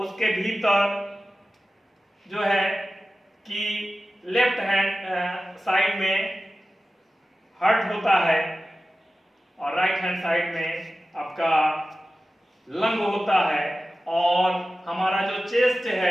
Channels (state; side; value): normal; both; correlation 0.95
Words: भीतर जो है कि लेफ्ट हैंड साइड में हार्ट होता है और राइट हैंड साइड में आपका लंग होता है। और हमारा जो चेस्ट